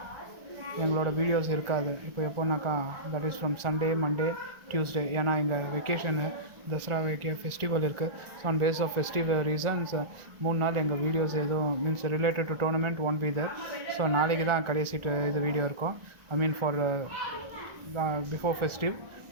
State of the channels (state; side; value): late; left; 1.3 ms